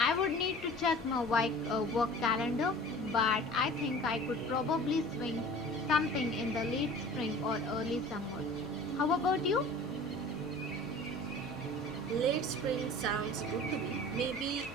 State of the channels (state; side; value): normal; both; correlation 0.42